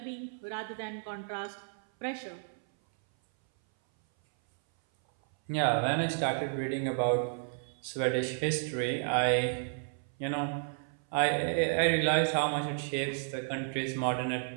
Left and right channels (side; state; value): left; silent; 56 dB below the other